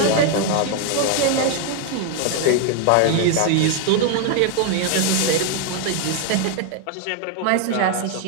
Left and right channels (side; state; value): both; different; correlation 0.00